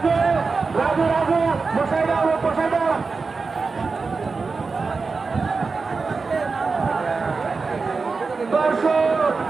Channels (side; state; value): left; quieter; 4.4 dB